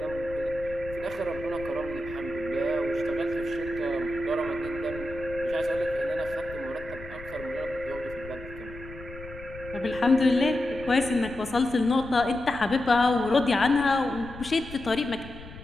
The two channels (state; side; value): noise; left; rumble, 15 dB below the sound